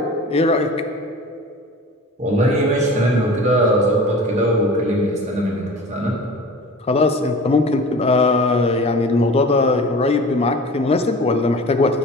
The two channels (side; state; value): both; normal; correlation 0.39